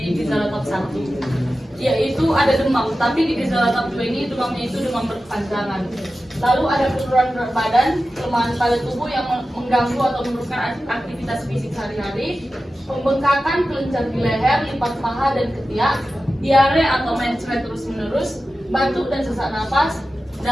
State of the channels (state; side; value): normal; both; correlation 0.93